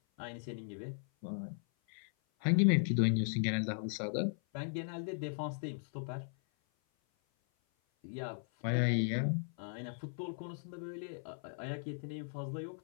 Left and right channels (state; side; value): silent; right; 53 dB below the other